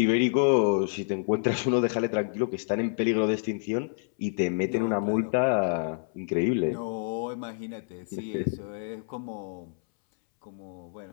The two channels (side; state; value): right; silent; 59 dB below the other